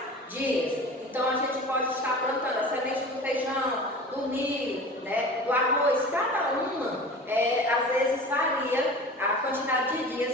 dias. Então a gente pode estar plantando a semente do feijão, do milho, do arroz, cada uma às vezes varia a quantidade de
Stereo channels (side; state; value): both; normal; correlation 0.37